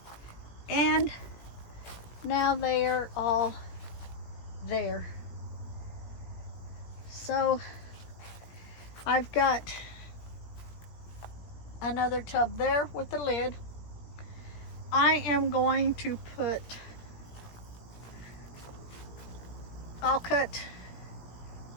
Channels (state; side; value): late; right; 17 ms